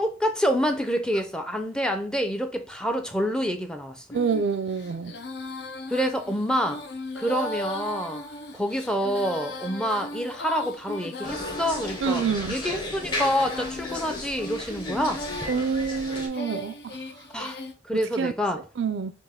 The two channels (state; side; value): normal; both; correlation 0.60